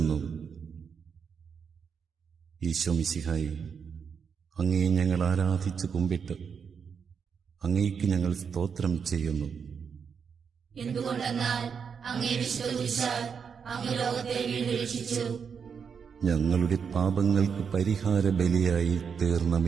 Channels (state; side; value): quieter; left; 6.5 dB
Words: ഈശോ മിശിഹായെ, അങ്ങയെ ഞങ്ങൾ ആരാധിച്ച് കുമ്പിട്ട് അങ്ങേക്ക് ഞങ്ങൾ സ്തോത്രം ചെയ്യുന്നു. എന്തുകൊണ്ടെന്നാൽ അങ്ങേ വിശ്വസിച്ചാൽ അങ്ങ് ലോകത്തെ വീണ്ടും രക്ഷിച്ചു. ഞങ്ങളുടെ പാപങ്ങൾക്ക് പരിഹാര ബലിയായി തീർന്ന